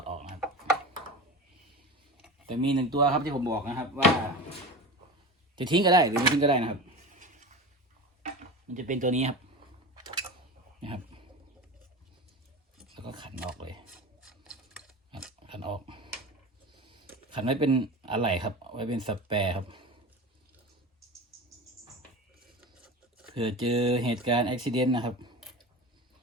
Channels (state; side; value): normal; both; correlation 0.30